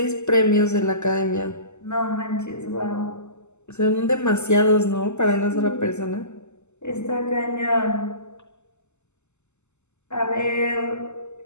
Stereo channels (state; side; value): late; right; 0.83 ms